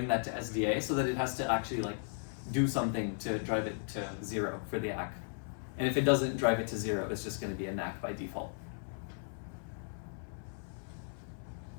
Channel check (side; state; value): right; silent; 54 dB below the other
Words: that to SDA so that it has to actually like do something to drive it to 0 for the ACK. And if it doesn't drive it to 0, it's just going to be a NAC by default.